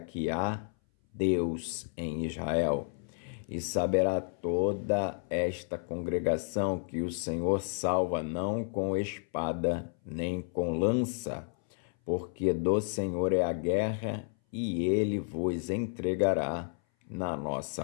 há Deus em Israel. E saberá toda esta congregação que o Senhor salva não com espada nem com lança, porque do Senhor é a guerra e ele vos entregará na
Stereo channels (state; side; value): silent; right; 57 dB below the other